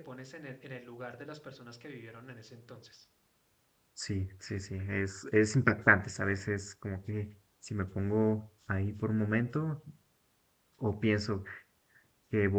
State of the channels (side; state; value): both; identical; correlation 1.00